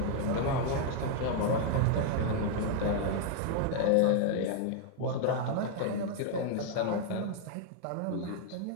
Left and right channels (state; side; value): different; both; correlation 0.00